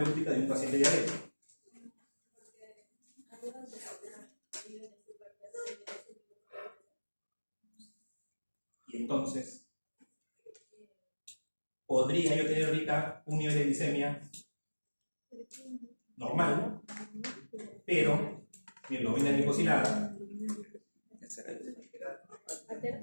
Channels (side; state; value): both; inverted; correlation -1.00